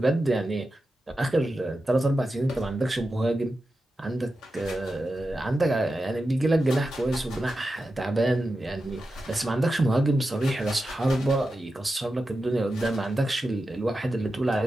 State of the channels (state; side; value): normal; both; correlation 0.91